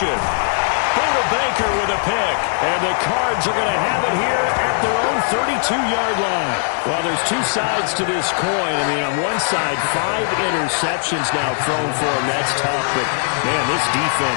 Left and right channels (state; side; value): silent; right; 65 dB below the other